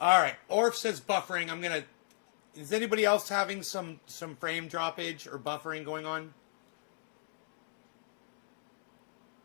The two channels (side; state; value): right; silent; digital silence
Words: right. Orf says buffering. Is anybody else having some frame droppage or buffering going on?